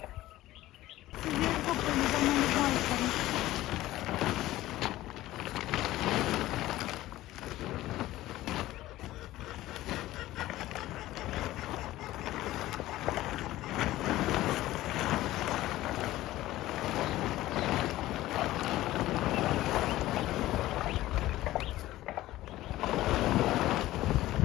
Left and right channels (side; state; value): right; quieter; 15.9 dB